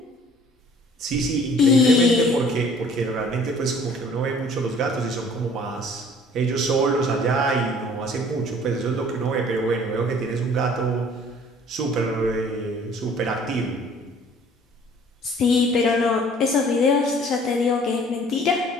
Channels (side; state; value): both; normal; correlation 0.53